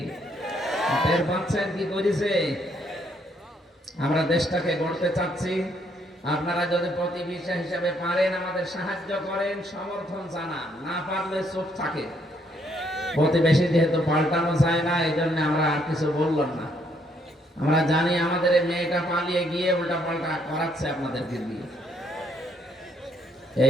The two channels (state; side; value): normal; both; correlation 0.71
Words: টের পাচ্ছেন কি করেছে? আমরা দেশটাকে গড়তে চাচ্ছি। আপনারা যদি প্রতিবেশী হিসেবে পারেন আমাদের সাহায্য করেন, সমর্থন জানান, না পারলে চুপ থাকে। প্রতিবেশী যেহেতু পাল্টানো যায় না, এই জন্য আমরা আর কিছু বললাম না। আমরা জানি আমাদের এই মেয়েটা পালিয়ে গিয়ে উল্টা পাল্টা করাচ্ছে আপনাদেরকে দিয়ে।